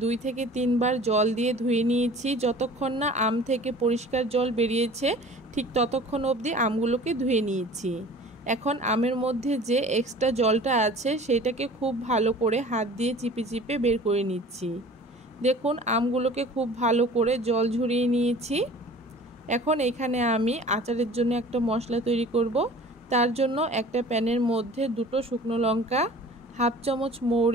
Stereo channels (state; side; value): normal; both; correlation 0.44